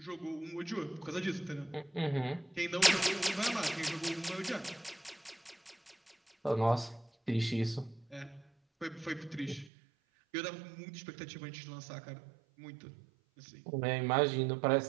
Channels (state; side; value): drops out; left; at 9.7 s